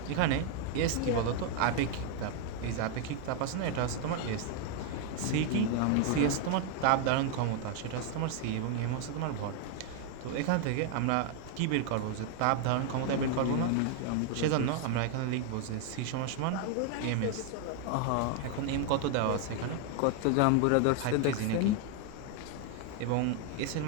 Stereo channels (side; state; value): both; different; correlation 0.01